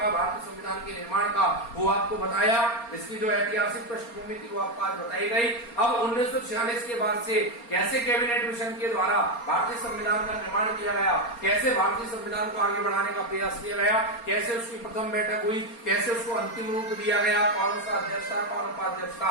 भारतीय संविधान के निर्माण का, वो आपको बताया। इसकी जो ऐतिहासिक पृष्ठभूमि थी वो आपको आज बताई गई। अब 1946 के बाद से कैसे कैबिनेट मिशन के द्वारा भारतीय संविधान का निर्माण किया गया, कैसे भारतीय संविधान को आगे बढ़ाने का प्रयास किया गया, कैसे उसकी प्रथम बैठक हुई, कैसे उसको अंतिम रूप दिया गया, कौन सा अध्यक्ष था, कौन उपाध्यक्ष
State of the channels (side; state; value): right; late; 4.3 ms